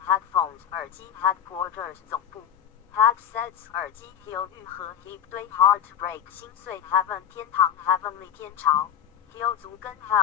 headphones 耳机 headquarters 总部 headsets 耳机 hill 愈合 heap 堆 heartbreak 心碎 heaven 天堂 heavenly 天朝 hill 足跟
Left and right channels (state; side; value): quieter; right; 9.3 dB